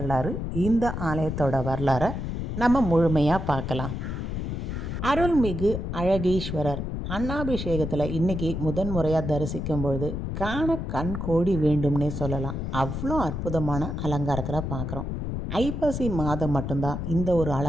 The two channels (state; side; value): noise; left; rumble, 4 dB below the sound